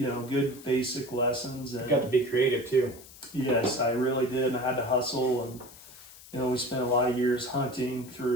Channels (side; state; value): left; noise; hiss, 19 dB below the sound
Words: basic lessons. And You got to be creative too. yes, I really did. And I had to hustle, and we spent a lot of years hunting